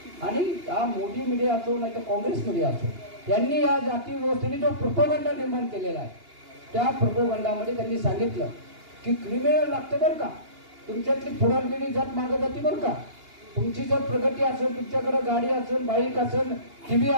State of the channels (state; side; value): late; left; 2.8 ms